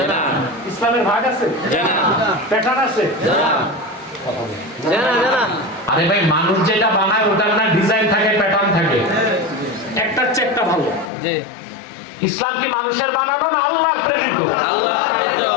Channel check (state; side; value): drops out; right; at 11.1 s